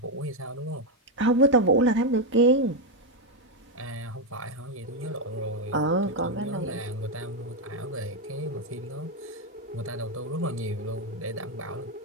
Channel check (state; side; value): normal; both; correlation 0.04